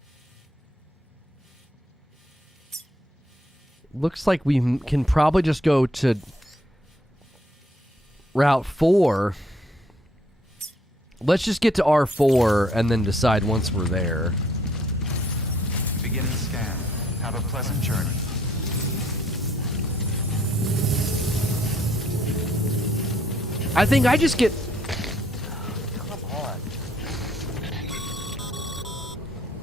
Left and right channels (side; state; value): both; normal; correlation 0.67